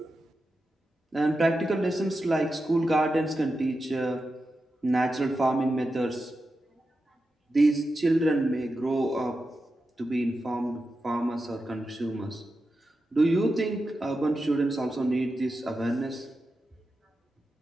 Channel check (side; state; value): both; normal; correlation 0.90